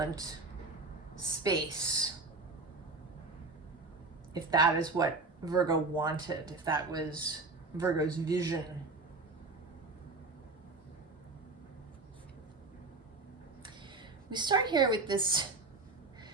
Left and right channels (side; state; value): left; quieter; 3.5 dB